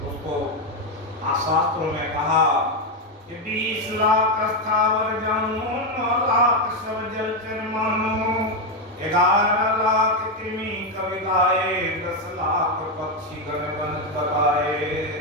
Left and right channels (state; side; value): normal; both; correlation 0.06